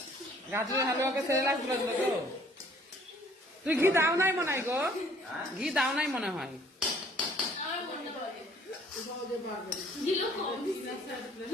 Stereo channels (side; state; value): both; normal; correlation 0.58